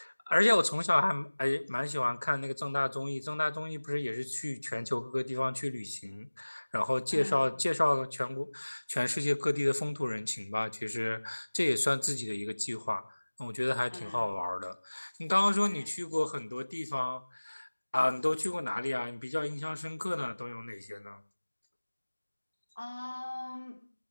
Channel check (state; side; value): inverted; both; correlation -1.00